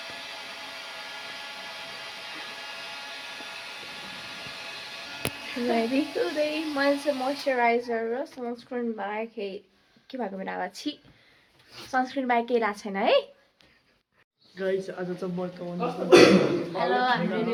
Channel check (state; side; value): identical; both; correlation 1.00